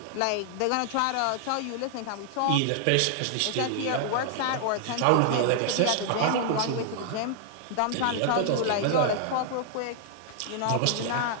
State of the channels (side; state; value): both; different; correlation 0.00